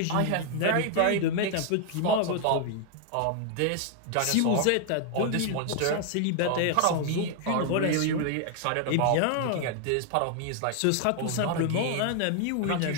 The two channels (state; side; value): different; both; correlation 0.00